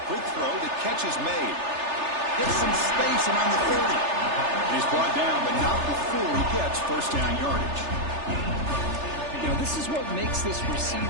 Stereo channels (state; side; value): late; left; 3.3 ms